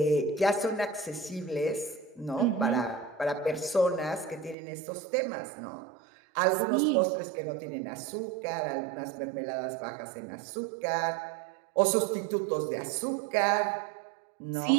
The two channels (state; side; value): drops out; left; at 4.5 s